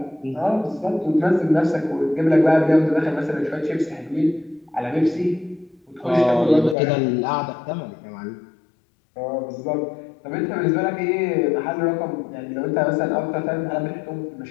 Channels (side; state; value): right; drops out; at 6.8 s